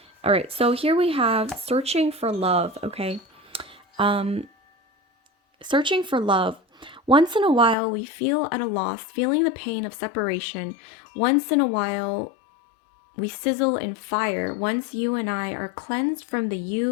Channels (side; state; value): right; drops out; at 7.8 s